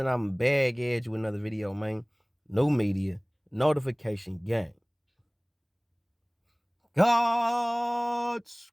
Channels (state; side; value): identical; both; correlation 1.00